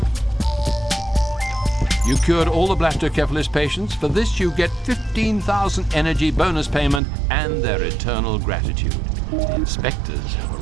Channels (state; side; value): drops out; left; at 7.0 s